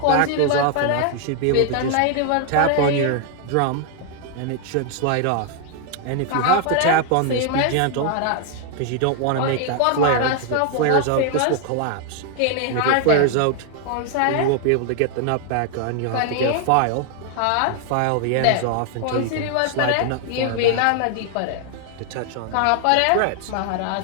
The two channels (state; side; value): different; both; correlation 0.00